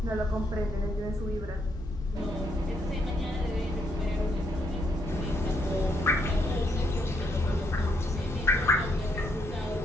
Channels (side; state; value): both; normal; correlation 0.74